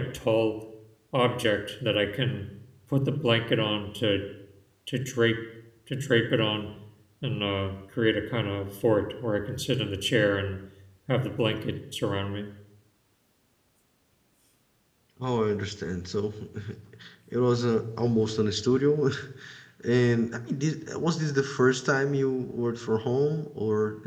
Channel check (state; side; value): identical; both; correlation 1.00